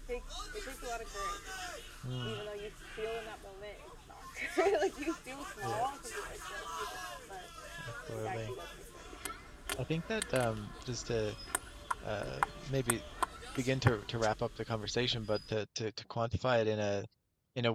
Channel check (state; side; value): identical; both; correlation 1.00